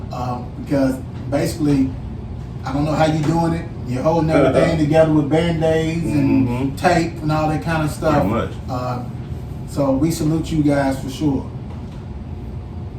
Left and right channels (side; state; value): both; identical; correlation 1.00